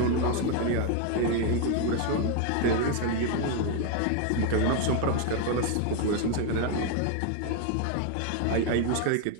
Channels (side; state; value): both; different; correlation 0.01